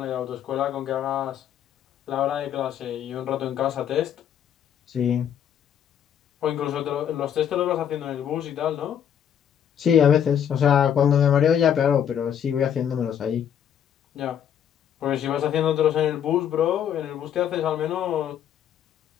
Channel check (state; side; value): quieter; right; 9.1 dB